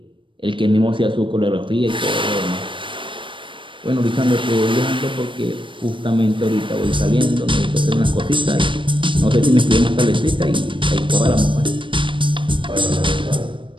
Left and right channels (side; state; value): left; late; 0.24 ms